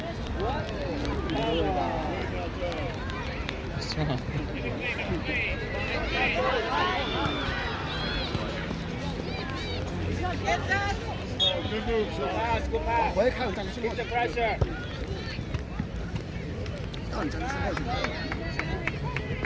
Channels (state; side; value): identical; both; correlation 1.00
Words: Strong. Good move, Go son. pass, go pass. 我也看有站之后 Keep，the pressure. 让你站之后去。